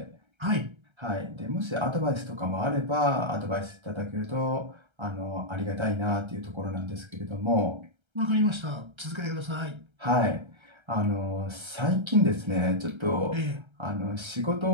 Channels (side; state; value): left; late; 1.3 ms